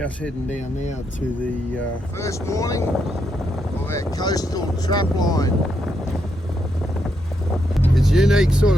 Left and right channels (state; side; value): normal; both; correlation 0.80